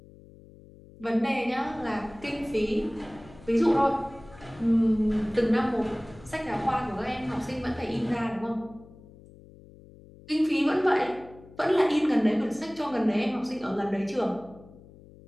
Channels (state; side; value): noise; left; hum, 22 dB below the sound